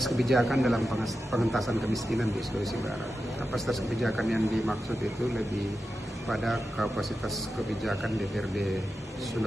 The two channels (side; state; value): both; normal; correlation 0.91